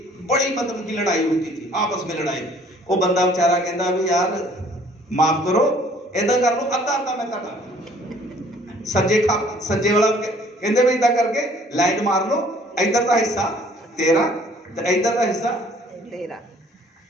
बड़ी मतलब की लड़ाई होती थी, आपस में लड़ाई, वो बंदा बेचारा कहता भी यार माफ करो, इधर कर लो अद्धा अद्धा मैं कर सज्जे वाला कहते भी इधर करके लाइन मार लो, इधर का हिस्सा तेरा तो इधर का हिस्सा तेरा।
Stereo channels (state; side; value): normal; both; correlation 0.57